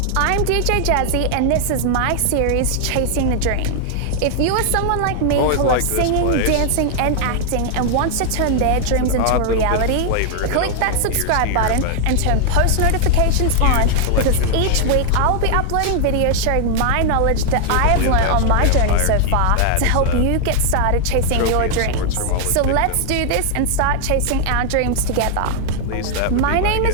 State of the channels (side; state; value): both; different; correlation 0.00